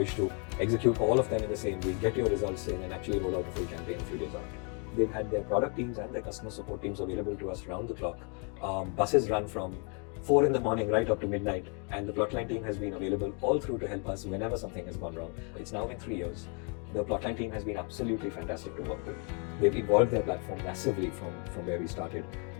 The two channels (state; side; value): quieter; right; 37.3 dB